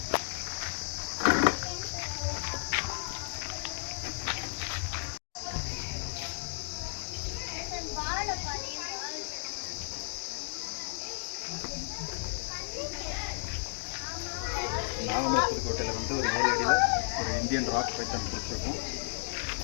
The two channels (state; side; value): silent; right; digital silence